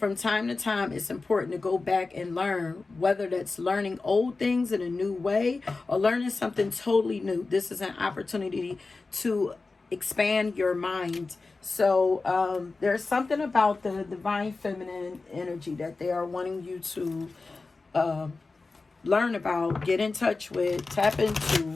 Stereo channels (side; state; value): right; quieter; 3.8 dB